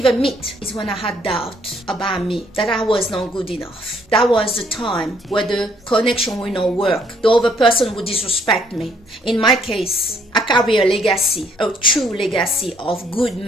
meet, is when I had doubt about me, that I was not good enough. That was the time where the connection will not work. The other person would disrespect me. In my case, I carry a legacy, a true legacy of good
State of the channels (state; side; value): normal; both; correlation 0.66